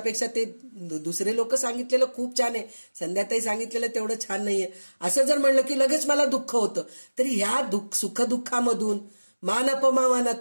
ते दुसरे लोक सांगितलेलं खूप छान आहे. संध्याताई सांगितलेलं तेवढं छान नाहीये असं जर म्हणलं की लगेच मला दुःख होतं. तरी ह्या सुखदुःखामधून मान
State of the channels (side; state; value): both; inverted; correlation -1.00